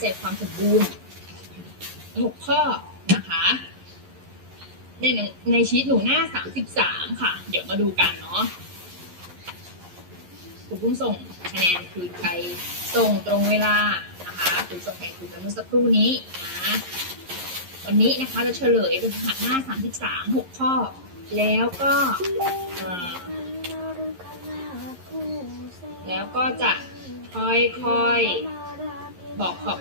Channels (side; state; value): left; late; 11 ms